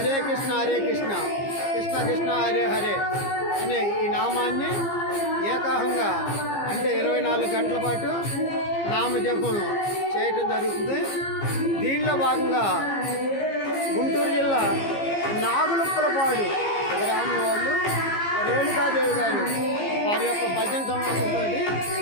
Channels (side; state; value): right; late; 15 ms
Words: కృష్ణ కృష్ణ కృష్ణ హరే హరే అనే ఈ నామాన్ని ఏకాహంగా అంటే 24 గంటల పాటు నామజపం చేయటం జరుగుతుంది. దీనిలో భాగంగా గుంటూరు జిల్లా నాగులుప్పలపాడు గ్రామం వాళ్ళు రేణుకాదేవి గారు వారి యొక్క భజన సమావేశంతో